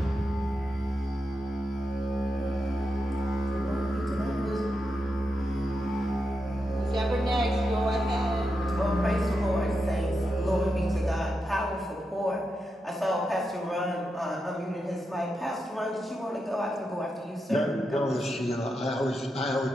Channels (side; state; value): both; normal; correlation 0.86